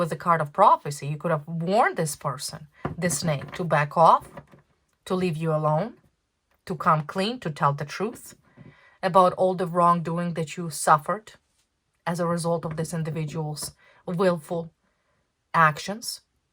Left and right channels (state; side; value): identical; both; correlation 1.00